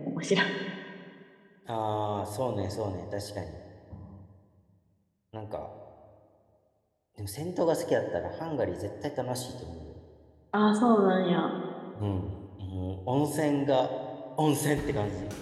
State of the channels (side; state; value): both; identical; correlation 1.00